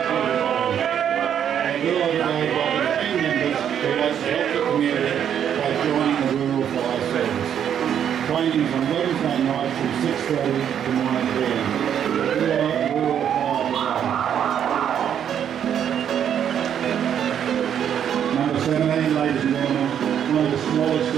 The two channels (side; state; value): left; quieter; 9.1 dB